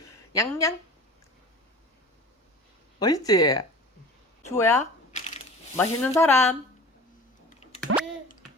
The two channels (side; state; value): both; normal; correlation 0.39